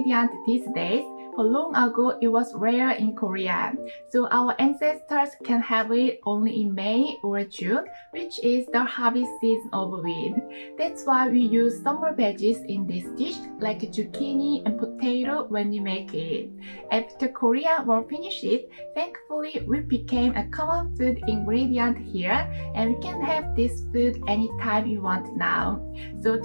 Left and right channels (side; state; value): both; inverted; correlation -1.00